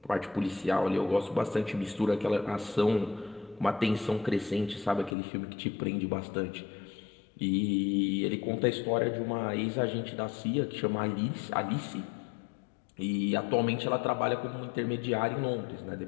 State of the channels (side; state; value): right; drops out; at 5.2 s